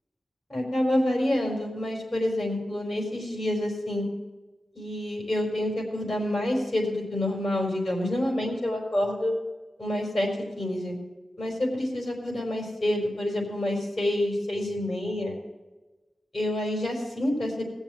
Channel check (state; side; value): normal; both; correlation 0.90